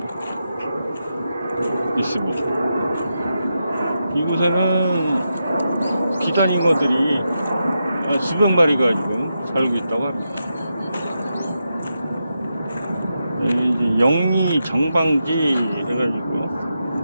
있습니다. 이곳에는 비단잉어들이 수백 마리가 지금 살고 있다고 합니다. 이제 영리 정방지 해가지고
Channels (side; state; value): both; inverted; correlation -0.87